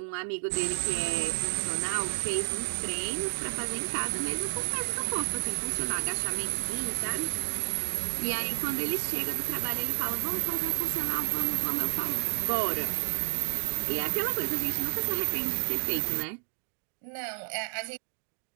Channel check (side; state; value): left; silent; digital silence